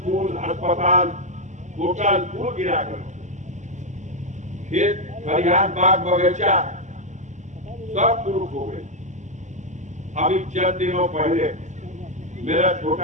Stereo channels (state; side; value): late; left; 0.34 ms